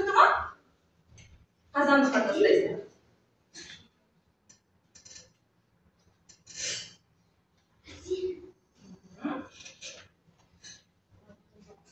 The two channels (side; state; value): both; identical; correlation 1.00